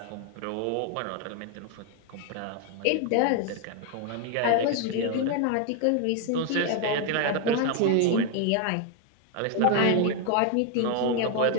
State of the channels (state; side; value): different; both; correlation 0.01